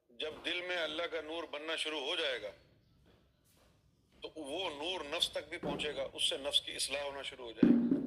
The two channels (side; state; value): both; identical; correlation 1.00